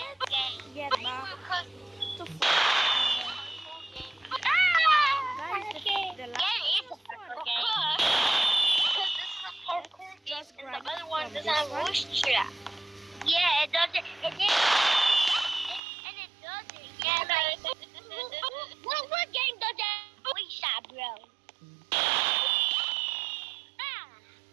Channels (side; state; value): left; drops out; at 15.8 s